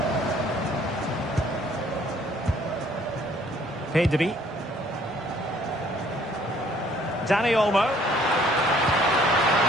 Pedri. Dani Olmo.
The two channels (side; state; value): both; normal; correlation 0.60